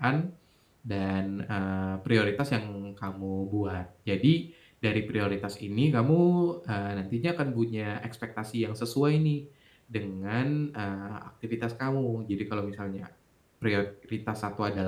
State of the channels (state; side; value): identical; both; correlation 1.00